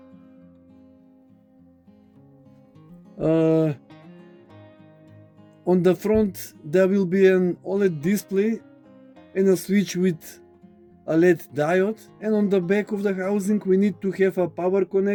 On the front there will be an OLED display and a switch with a LED diode, and on the back of the housing we need to have a power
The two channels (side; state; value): both; identical; correlation 1.00